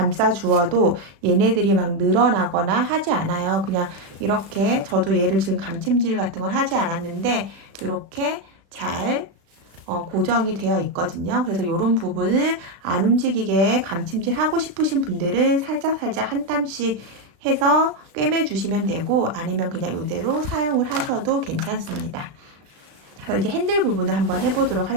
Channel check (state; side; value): late; left; 36 ms